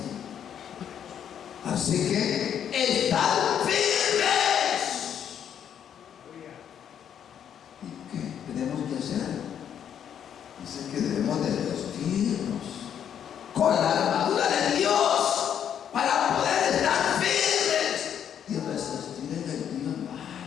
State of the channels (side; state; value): right; quieter; 9.0 dB